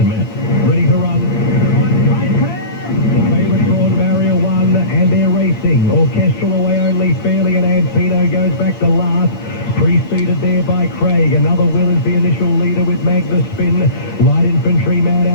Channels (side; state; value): right; late; 8.6 ms